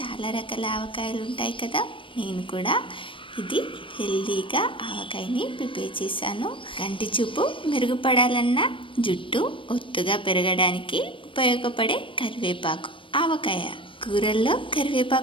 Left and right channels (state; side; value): late; right; 0.25 ms